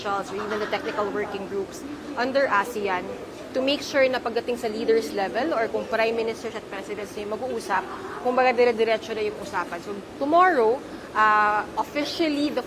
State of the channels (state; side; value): identical; both; correlation 1.00